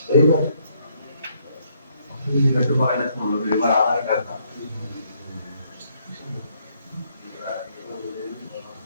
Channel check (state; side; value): inverted; both; correlation -0.70